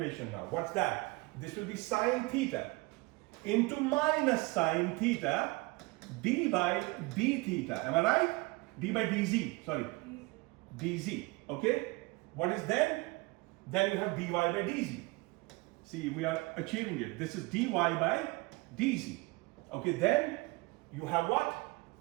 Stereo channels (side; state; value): left; quieter; 24.3 dB